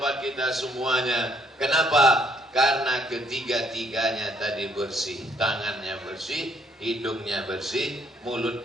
kita semuanya. Kenapa? Karena ketiga-tiganya tadi bersih. Tangannya bersih, hidungnya bersih,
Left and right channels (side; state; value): both; normal; correlation 0.67